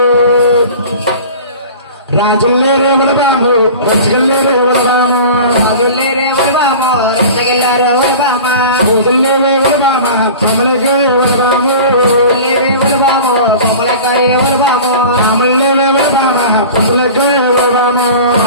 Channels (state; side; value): inverted; both; correlation -0.38